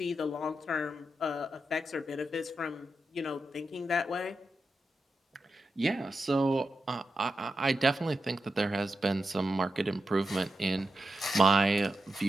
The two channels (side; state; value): both; normal; correlation 0.89